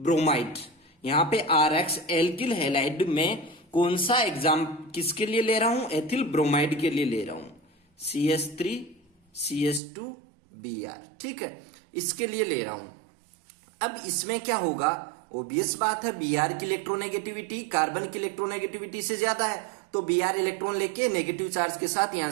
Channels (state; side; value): drops out; left; at 9.8 s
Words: यहां पे RX एल्किल हैलाइड में कौन सा एग्जाम किसके लिए ले रहा हूं, एथिल ब्रोमाइड के लिए ले रहा हूं, CH3 CH2 Br, ठीक है, इसके लिए ले रहा हूं। अब इसमें क्या होगा, ओबियस बात है, Br की इलेक्ट्रोनेगेटिविटी कार्बन की इलेक्ट्रोनेगेटिविटी से ज्यादा है, तो Br इलेक्ट्रॉन लेके नेगेटिव चार्ज के साथ यहां